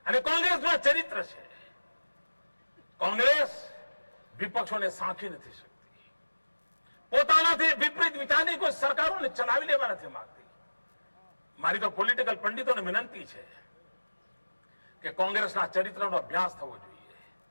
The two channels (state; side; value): inverted; both; correlation -1.00